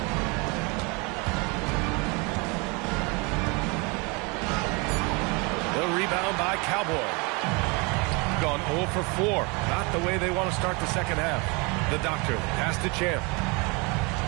The rebound by Cowboy. Gone 0 for 4. Not the way they want to start the second half. The doctor pass to Champ.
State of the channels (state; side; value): quieter; left; 29.3 dB